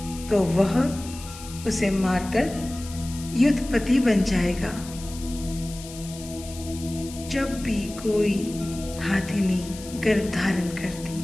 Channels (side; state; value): left; noise; hiss, 15 dB below the sound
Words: तो वह उसे मारकर युद्धपति बन जाएगा। जब भी कोई हाथिनी गर्भ धारण करती,